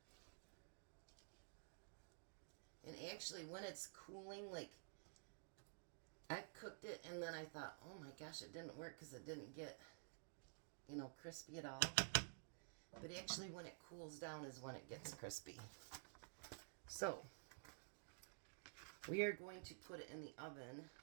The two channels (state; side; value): silent; left; digital silence